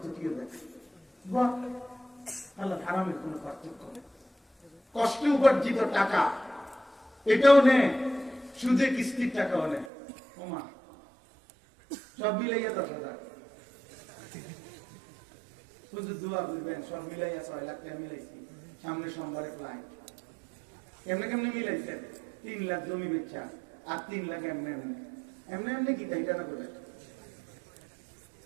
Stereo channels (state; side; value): drops out; left; at 9.9 s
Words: দেখে। হালাল হারামের কোন পার্থক্য নেই। কষ্টে উপার্জিত টাকা এটাও নেই, সুদে কিস্তির টাকাও নেই। ওমা সব মিলাইয়া 10,000, শুধু দোয়া করবেন, সব মিলাইয়া 6 লাখ টাকা মিলাইছি। সামনে সোমবারে ক্লায়েন্ট, কেমনে কেমনে মিলাইছেন? 3 লাখ জমি বেচা আর 3 লাখ এমনি এমনি এমনি এমনি কি তাই জানা করে